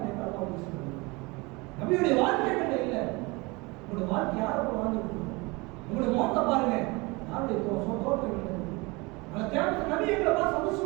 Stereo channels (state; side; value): quieter; left; 25.2 dB